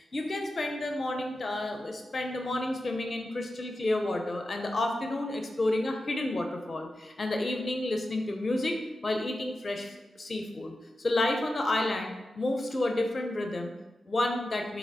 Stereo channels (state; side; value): normal; both; correlation 0.91